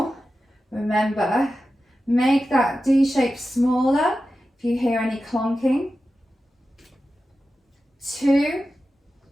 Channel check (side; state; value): both; normal; correlation 0.92